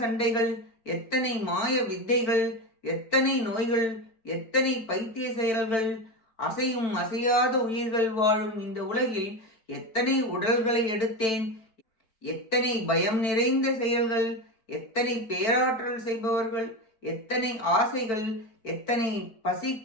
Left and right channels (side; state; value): right; late; 4.5 ms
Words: சண்டைகள், எத்தனை மாய வித்தைகள், எத்தனை நோய்கள், எத்தனை பைத்திய செயல்கள், அசையும் அசையாத உயிர்கள் வாழும் இந்த உலகில் எத்தனை உடல்களை எடுத்தேன், எத்தனை பயம் நிறைந்த செயல்கள், எத்தனை பேராற்றல் செய்பவர்கள், எத்தனை ஆசைகள், எத்தனை